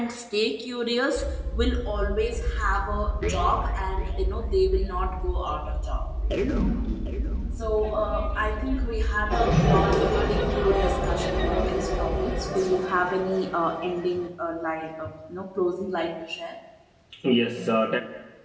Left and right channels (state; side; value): identical; both; correlation 1.00